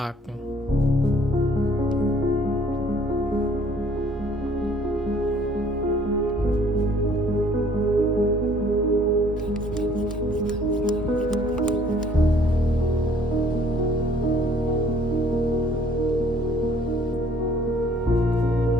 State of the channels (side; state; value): both; normal; correlation 0.58